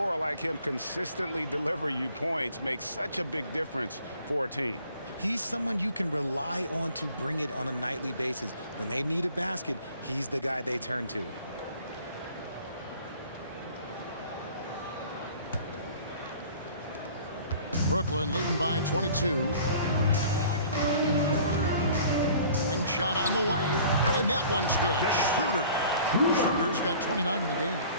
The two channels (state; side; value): inverted; both; correlation -0.49